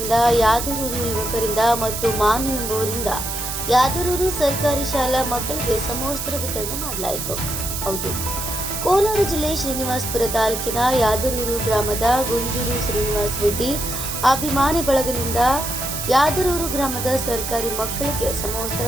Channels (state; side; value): noise; right; hiss, 5 dB below the sound